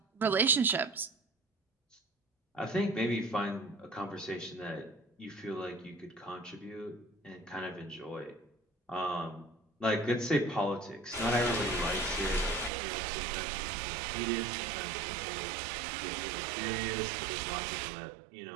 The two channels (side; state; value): left; drops out; at 12.7 s